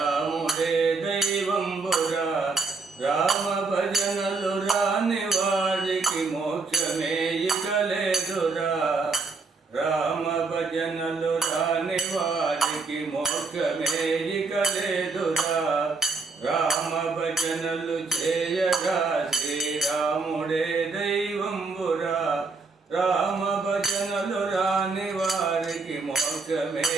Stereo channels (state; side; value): quieter; left; 4.1 dB